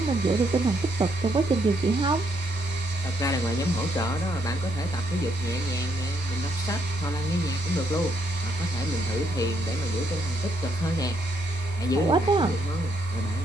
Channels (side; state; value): both; normal; correlation 0.74